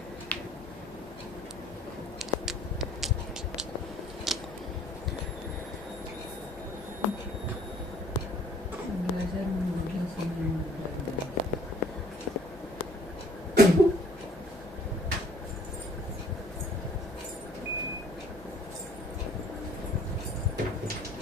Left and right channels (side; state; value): both; normal; correlation 0.56